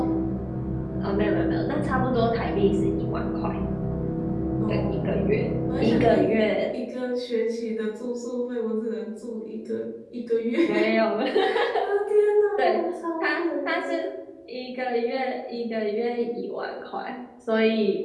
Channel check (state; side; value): identical; both; correlation 1.00